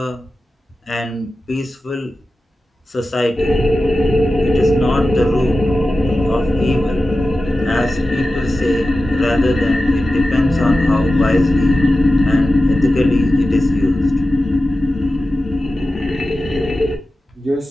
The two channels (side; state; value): both; normal; correlation 0.94